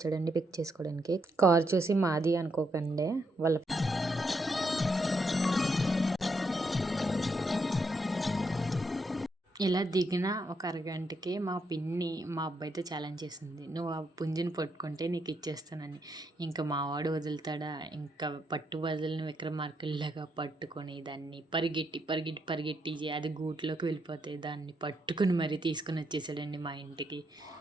పిక్ చేసుకోవడానికి. కార్ చూసి మాది అనుకోకండి, వాళ్ళ ఇలా దిగిన ఒక అరగంటకి మా పిన్ని మా అబ్బాయితో ఛాలెంజ్ చేసింది, నువ్వు ఆ పుంజుని పట్టుకుంటే నీకు ఇచ్చేస్తానని. ఇంకా మావాడు వదులుతాడా? ఇంకా పట్టు వదిలిన విక్రమార్కుల్లాగా పట్టుకొని దాన్ని పరిగెట్టి పరిగెట్టి పరిగెట్టి అది గూట్లోకి వెళ్ళిపోతే దాన్ని పట్టుకుని మరీ తీసుకుని వచ్చేసాడండి మా ఇంటికి.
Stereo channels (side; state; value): both; normal; correlation 0.78